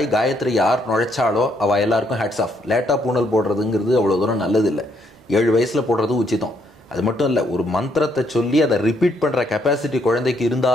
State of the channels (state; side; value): normal; both; correlation 0.72